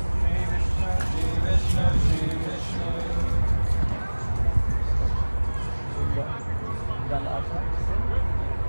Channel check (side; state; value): both; inverted; correlation -1.00